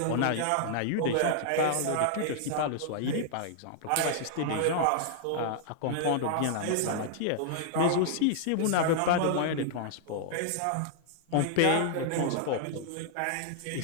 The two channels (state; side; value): different; both; correlation -0.01